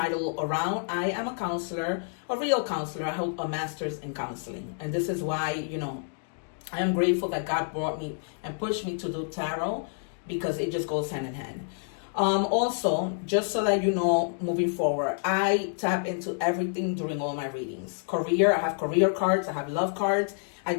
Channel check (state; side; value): silent; right; digital silence